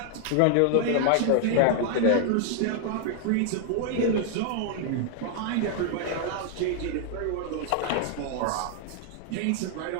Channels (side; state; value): both; different; correlation 0.00